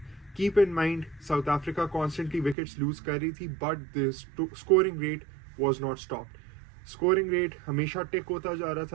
keep in mind, South Africa constantly wickets lose कर रही थी, but the scoring rate was not stopped. Scoring rate हमेशा टिक होता जा रहा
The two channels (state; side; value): drops out; left; at 2.6 s